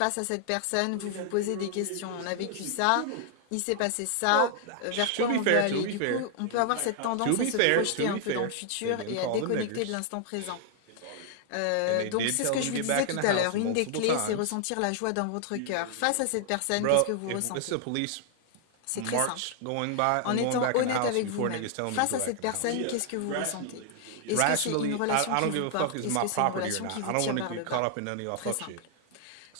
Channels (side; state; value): both; different; correlation 0.00